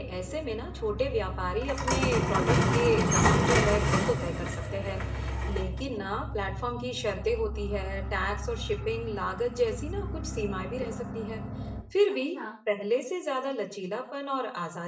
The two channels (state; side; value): identical; both; correlation 1.00